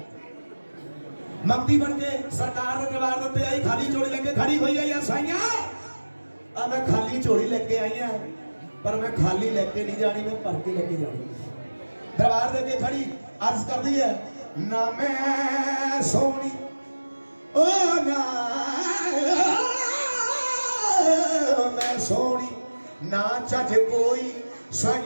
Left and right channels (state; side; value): inverted; both; correlation -1.00